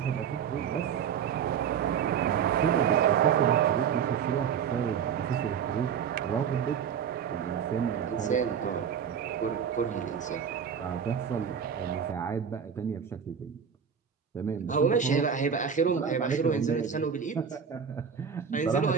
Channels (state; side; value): quieter; left; 7.5 dB